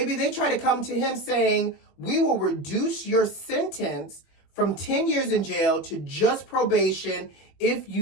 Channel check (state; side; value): late; right; 21 ms